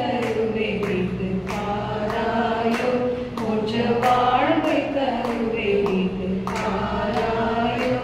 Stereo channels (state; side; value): identical; both; correlation 1.00